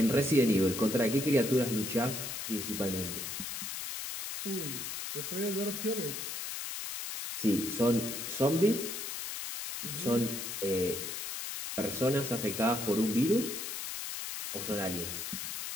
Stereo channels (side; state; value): left; noise; hiss, 5 dB below the sound